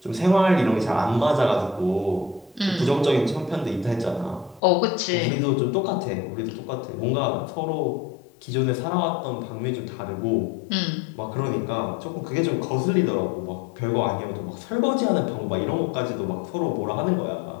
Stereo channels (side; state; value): right; drops out; at 4.6 s